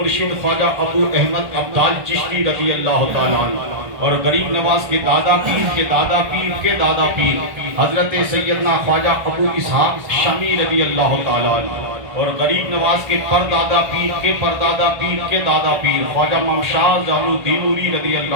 خواجہ ابو احمد عبدال چشتی رضی اللہ تعالیٰ عنہ، اور غریب نواز کے دادا پیر کے دادا پیر کے دادا پیر حضرت سیدنا خواجہ ابو اسحاق شامی رضی اللہ تعالیٰ عنہ، اور غریب نواز کے پردادا پیر کے پردادا پیر کے دادا پیر خواجہ ممشاہ زال الدین رضی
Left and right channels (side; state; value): left; late; 1.5 ms